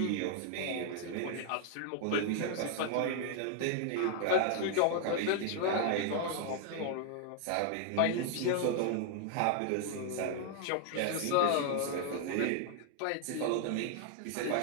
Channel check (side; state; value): both; different; correlation 0.00